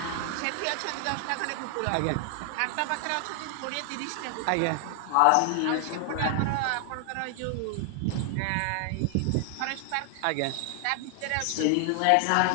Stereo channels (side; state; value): both; different; correlation 0.00